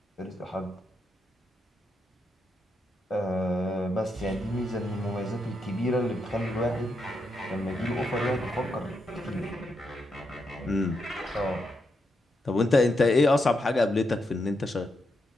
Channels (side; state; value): both; normal; correlation 0.82